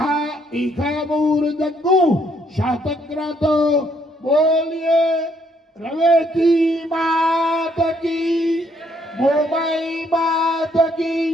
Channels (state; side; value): normal; both; correlation 0.70